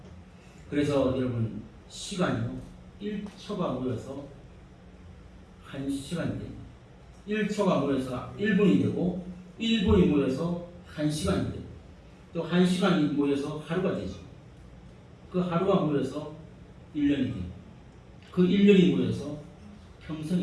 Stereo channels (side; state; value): both; identical; correlation 1.00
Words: 그래서 여러분, 시간이요, 1초가 모여서 1시간이 됩니다. 1초가 모여서 1분이 되고, 1분이 모여서 1시간이 되고, 또 1시간이 모여서 하루가 되죠. 그 하루가 모여서 1년이 되고, 그 1년이 모여서